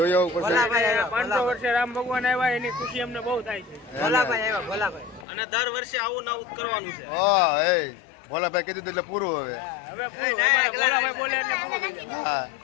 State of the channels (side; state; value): right; drops out; at 5.2 s